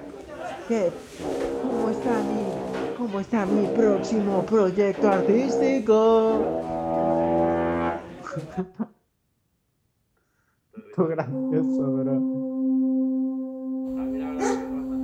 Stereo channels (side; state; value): both; identical; correlation 1.00